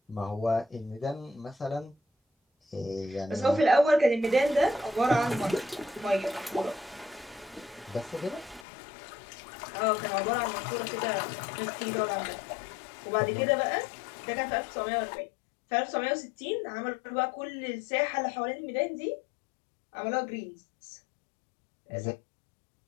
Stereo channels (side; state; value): right; drops out; at 8.7 s